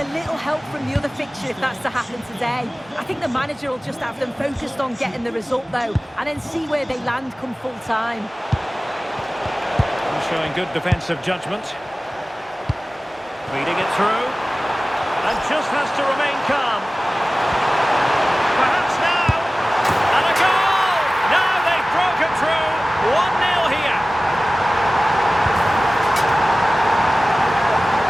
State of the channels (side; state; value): both; normal; correlation 0.97